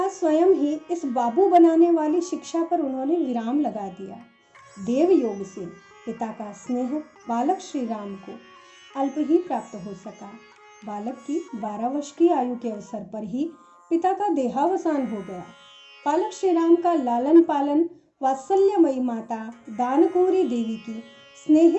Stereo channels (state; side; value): identical; both; correlation 1.00